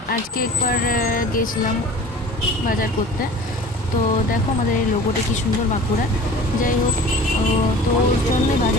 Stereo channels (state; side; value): normal; both; correlation 0.42